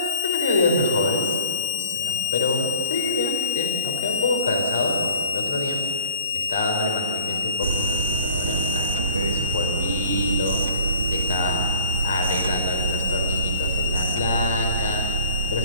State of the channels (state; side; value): inverted; both; correlation -0.44